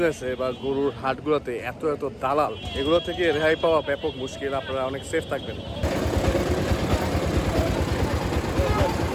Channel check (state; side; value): identical; both; correlation 1.00